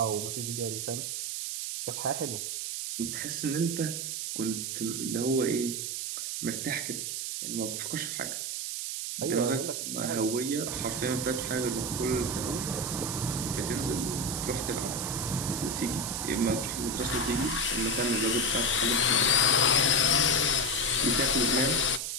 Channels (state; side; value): noise; right; hiss, 3 dB below the sound